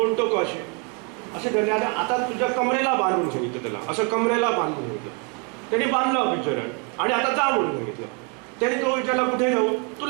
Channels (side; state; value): left; quieter; 34.5 dB